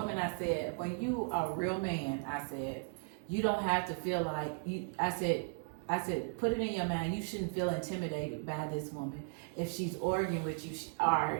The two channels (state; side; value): silent; left; 54 dB below the other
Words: I said, when you are a real man, I said, you don't have to feel like you. I said, put it in your mind. You shouldn't feel intimidated by this woman if she's arguing with you,